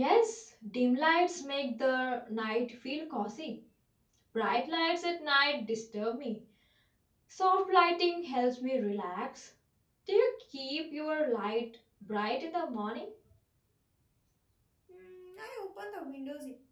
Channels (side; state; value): both; identical; correlation 1.00